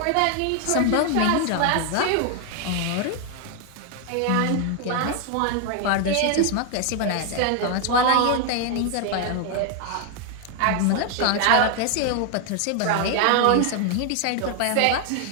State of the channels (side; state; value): both; different; correlation 0.00